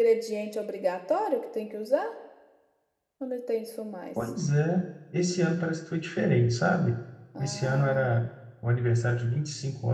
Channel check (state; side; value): identical; both; correlation 1.00